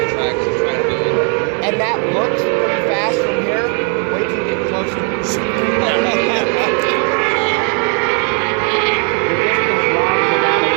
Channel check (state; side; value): quieter; left; 38.0 dB